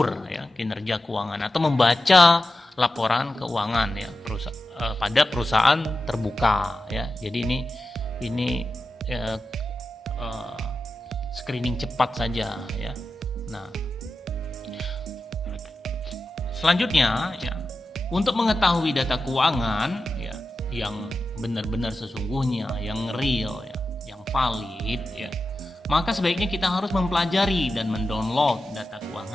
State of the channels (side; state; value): both; normal; correlation 0.92